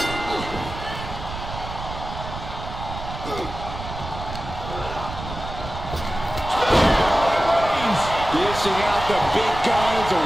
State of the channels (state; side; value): noise; right; rumble, 9 dB below the sound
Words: Dishing out the big guns